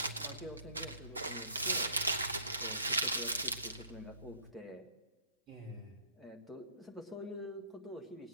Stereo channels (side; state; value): both; inverted; correlation -0.59